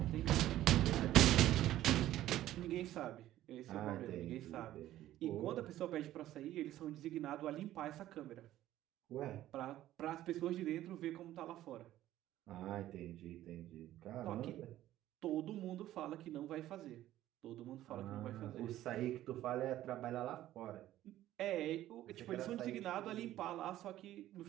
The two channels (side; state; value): left; quieter; 13.8 dB